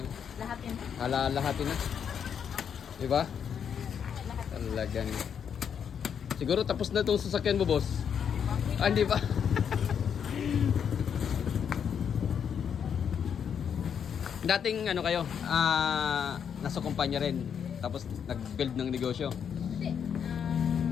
Lahatin. lahatin na. Diba? Talagang. Siguro tapos na itong sasakyan mo, boss. Hindi ba? Dating kayo, nasa kumpanya rin. Tapos nag-build ng negosyo. Hindi.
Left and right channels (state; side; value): quieter; right; 7.7 dB